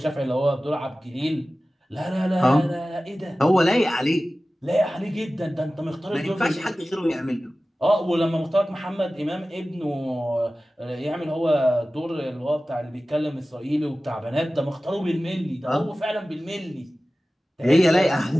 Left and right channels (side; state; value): both; normal; correlation 0.96